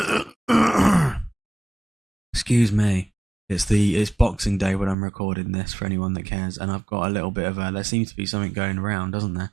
Excuse me. It's Boxing Day when I'm recording this, for anyone that cares, and I've got a little bit of there seems to be something going around, doesn't there?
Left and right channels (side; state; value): left; drops out; at 5.0 s